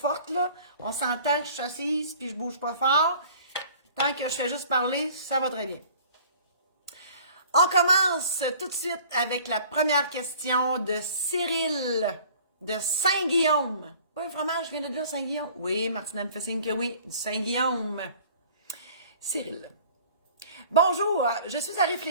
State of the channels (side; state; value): both; inverted; correlation -0.50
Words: là. On s'entend, je suis assise puis je bouge pas fort. Tant que je fais juste parler, ça va très bien. On commence tout de suite avec la première question de Cyril de Saint-Guillaume. Pas un fromage, je viens de dire Saint-Guillaume. Oui, Martina me fait signe que oui, du Saint-Guillaume. Cyril. Bonjour, je suis à